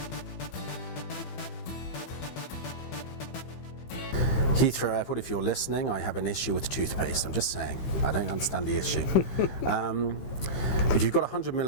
Heathrow Airport, if you're listening, I have an issue with toothpaste. I'm just saying. I don't understand the issue. If you've got 100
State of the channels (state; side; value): late; right; 15 ms